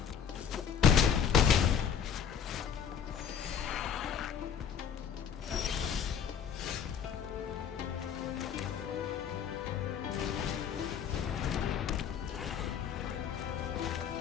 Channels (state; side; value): quieter; right; 7.8 dB